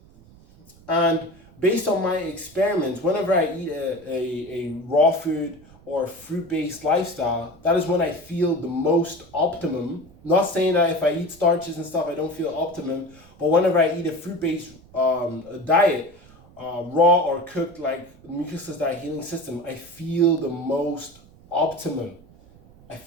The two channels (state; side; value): noise; right; rumble, 24 dB below the sound